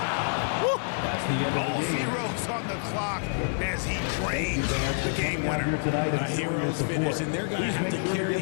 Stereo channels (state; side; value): silent; right; digital silence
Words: Woo! That's the end of All the game. zeros on the clock as he drains the game Here winner. tonight A hero's finish, and they're going to have to carry